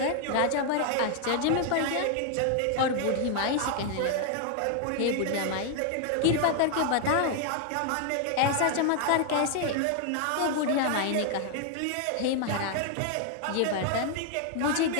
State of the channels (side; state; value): both; different; correlation 0.00